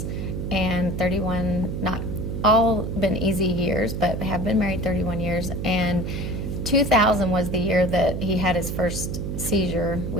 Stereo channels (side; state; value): right; noise; hum, 4 dB below the sound